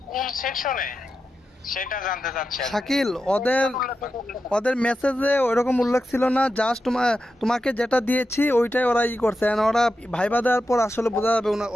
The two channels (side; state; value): both; normal; correlation 0.90